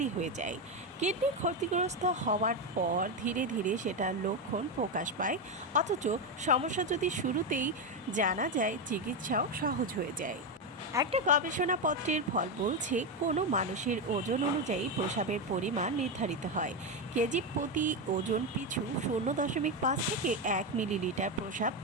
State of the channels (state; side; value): normal; both; correlation 0.10